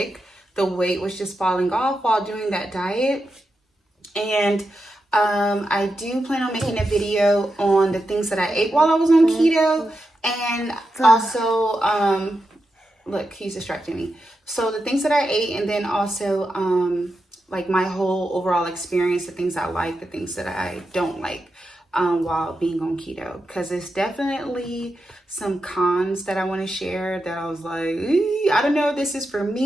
the weight was just falling off while doing that diet. And I do plan on making a video on the things that I ate while I was on keto, and also look, he's distracting me. So the things that I ate, and then also like my whole overall experience, the things I like, the things that I don't like while being on keto, because it's definitely some cons that I want to share that I was like, I don't know if this is for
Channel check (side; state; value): both; normal; correlation 0.88